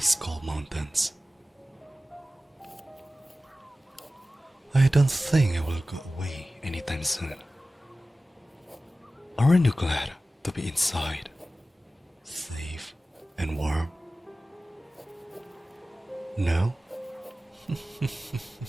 cold mountains. I don't think it will go away anytime soon. Aren't you glad to be inside, safe and warm? No?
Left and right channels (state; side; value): normal; both; correlation 0.95